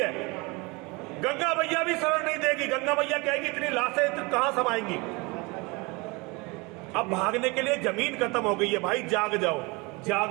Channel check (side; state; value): left; quieter; 26.5 dB